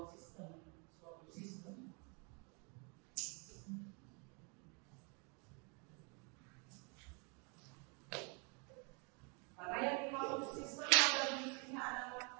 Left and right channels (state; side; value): quieter; left; 34.4 dB